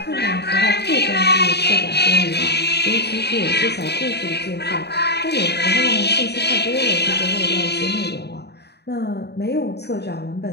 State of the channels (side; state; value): right; late; 0.48 ms